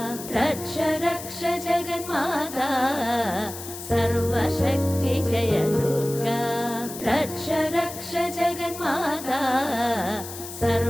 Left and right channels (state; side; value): noise; left; hiss, 11 dB below the sound